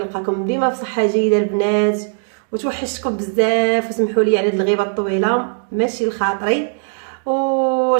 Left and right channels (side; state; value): left; silent; digital silence